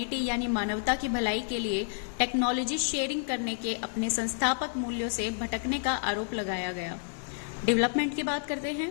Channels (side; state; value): right; silent; digital silence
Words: यानी मानवता की भलाई के लिए टेक्नोलॉजी शेयरिंग करने के अपने संस्थापक मूल्यों से भटकने का आरोप लगाया गया। डेवलपमेंट की बात करते हैं।